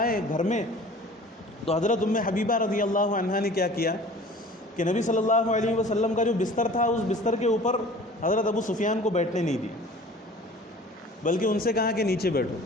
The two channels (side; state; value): both; normal; correlation 0.45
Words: گھر میں تو حضرت ام حبیبہ رضی اللہ عنہا نے کیا کیا کہ نبی صلی اللہ علیہ وسلم کا جو بستر تھا، اس بستر کے اوپر حضرت ابو سفیان کو بیٹھنے نہیں دی، بلکہ ان سے کہا کہ نیچے بیٹھو،